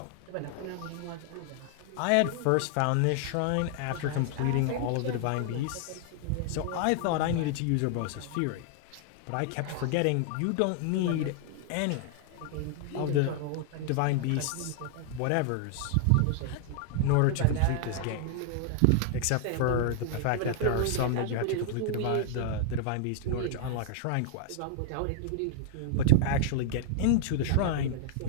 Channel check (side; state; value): both; different; correlation 0.00